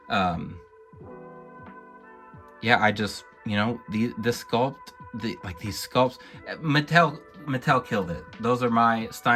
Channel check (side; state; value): both; identical; correlation 1.00